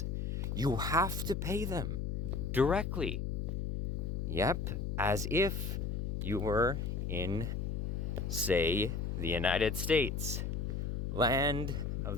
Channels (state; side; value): noise; left; hum, 1 dB below the sound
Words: you have to pay them directly. Yep, as if you were in, say, the United States, land of